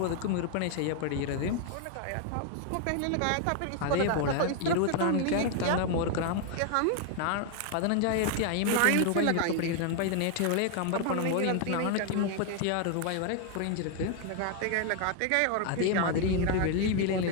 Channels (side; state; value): both; different; correlation 0.00